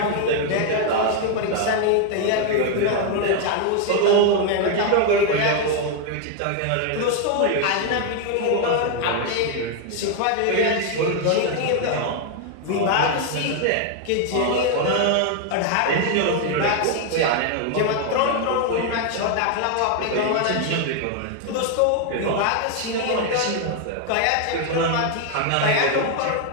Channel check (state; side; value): different; both; correlation 0.00